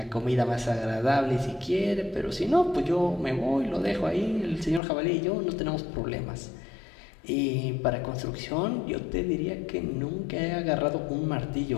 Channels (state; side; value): drops out; right; at 4.8 s